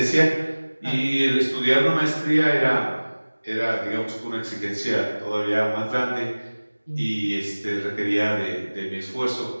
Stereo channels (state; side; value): inverted; both; correlation -1.00